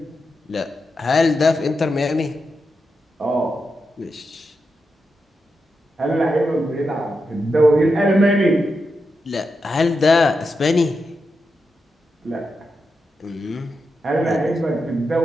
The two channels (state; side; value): normal; both; correlation 0.87